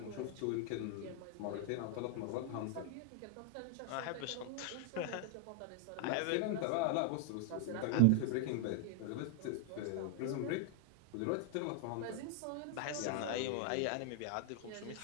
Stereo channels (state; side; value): different; both; correlation 0.00